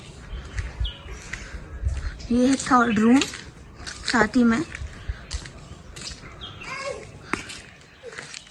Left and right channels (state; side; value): identical; both; correlation 1.00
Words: ये है थर्ड रूम, साथ ही में